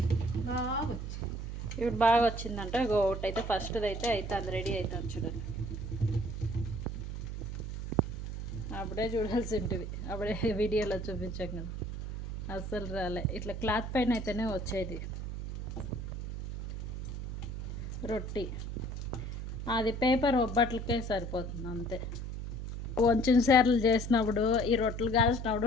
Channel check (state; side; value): noise; right; hum, 5 dB below the sound